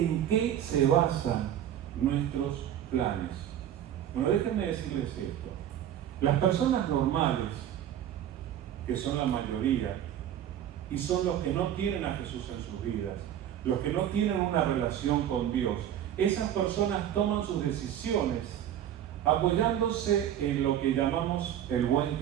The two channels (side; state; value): left; quieter; 10.7 dB